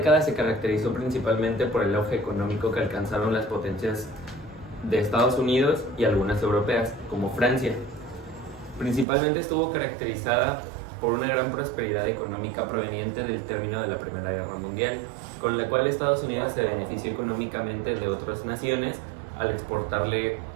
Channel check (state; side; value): drops out; left; at 9.1 s